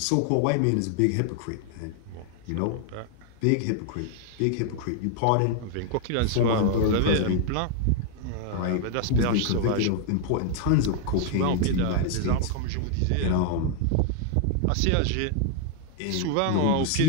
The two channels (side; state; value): both; different; correlation 0.00